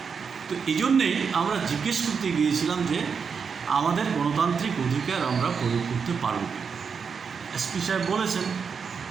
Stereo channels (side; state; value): left; quieter; 6.0 dB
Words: তো এই জন্যেই আমরা জিজ্ঞেস করতে গিয়েছিলাম যে আমাদের গণতান্ত্রিক অধিকার আমরা প্রয়োগ করতে পারব এসপি সাহেব বলেছেন